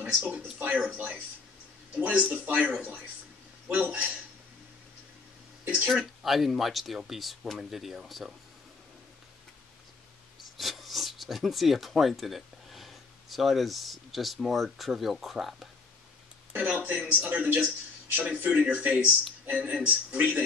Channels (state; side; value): quieter; right; 4.3 dB